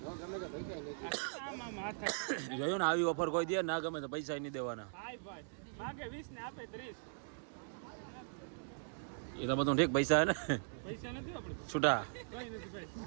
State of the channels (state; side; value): silent; left; digital silence